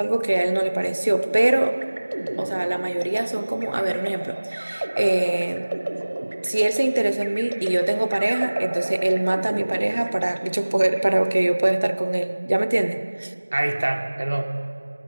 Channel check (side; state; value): both; inverted; correlation -1.00